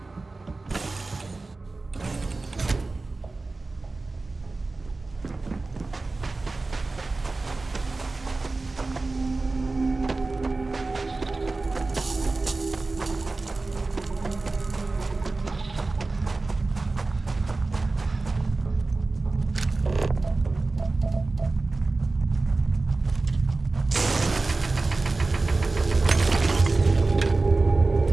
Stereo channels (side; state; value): left; quieter; 3.5 dB